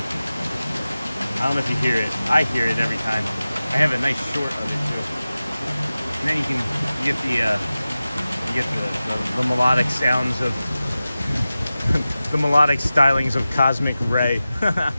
I don't know if you hear it. I hear it every time. I have a nice short of it too. And then you get the melodic sounds of the melodic stylings of Cosmic Ray.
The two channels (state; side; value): inverted; both; correlation -0.95